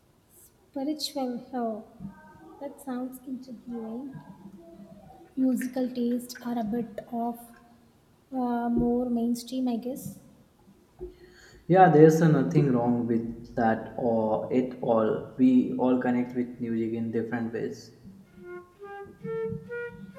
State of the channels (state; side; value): identical; both; correlation 1.00